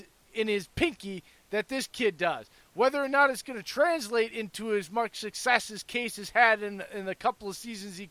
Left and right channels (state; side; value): identical; both; correlation 1.00